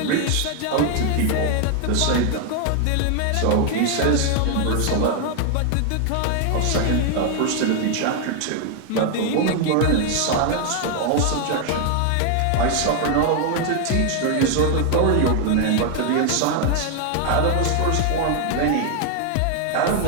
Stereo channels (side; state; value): both; different; correlation 0.00